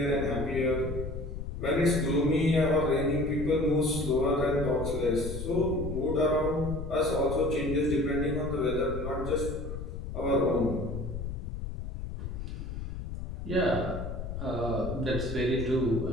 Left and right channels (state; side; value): noise; left; rumble, 6 dB below the sound